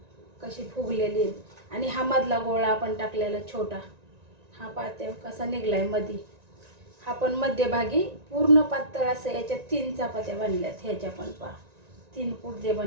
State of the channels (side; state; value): left; late; 1.9 ms